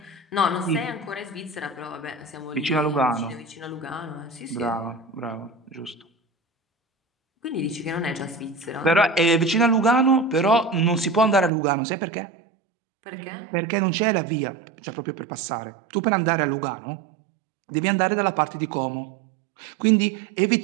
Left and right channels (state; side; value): drops out; left; at 11.5 s